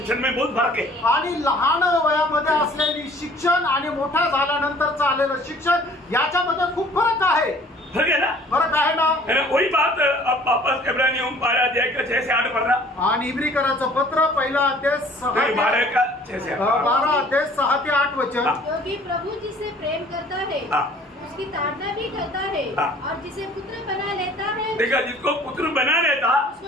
में बहुत फर्क है. आणि लहान वयामध्ये असलेली शिक्षण आणि मोठा झाल्यानंतरचं आलेलं शिक्षण याच्यामध्ये खूप फरक आहे. फर्क है ना. फरक आहे ना. वही बात अब वापस इब्रानियों 12 अध्याय का 6 से 8 पढ़ना. आणि इब्रिकराचं पत्र 1 अध्याय 12 का 6 से 8 12 अध्याय 6 ते 8 वचन. क्योंकि प्रभु जिसे प्रेम करता है उसकी ताड़ना भी करता है. और जिसे पुत्र बना लेता है देखा जिसको पुत्र बना लेता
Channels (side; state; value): both; normal; correlation 0.53